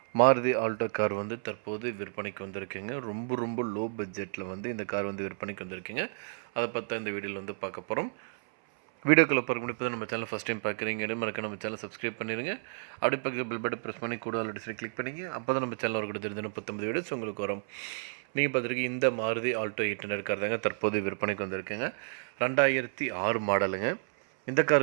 மாருதி ஆல்டோ கார் தற்போது விற்பனைக்கு வந்திருக்குங்க. ரொம்ப லோ பட்ஜெட்டில் இந்த கார் விற்பனைக்கு வந்திருக்குங்க. அதை பற்றி இந்த வீடியோவில் பார்க்க போகிறோம். வீடியோக்குள்ளே பார்க்க முடியாது. நம்ம சேனல் ஃபஸ்ட் டைம் பார்க்குறீங்க மறக்க நம்ம சேனல் சப்ஸ்கிரைப் பண்ணிடுங்க. அப்படி பக்கத்தில் பெல் பட்டன் ப்ரெஸ் பண்ணி கூட ஆல்ரெடி கிளிக் பண்ணிங்க. அப்போ தான் நம்ம சேனல் வரக்கூட தெரிஞ்சு 39 வீடியோஸ் உங்களுக்கு வரும். நீங்கள் பார்த்துருக்கீங்க இந்த மாருதி ஆல்டோ 800 கார் தாங்க தற்போது விற்பனைக்கு வந்திருக்குங்க. 2006 மாடலுங்க. இந்த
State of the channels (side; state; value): left; silent; 57 dB below the other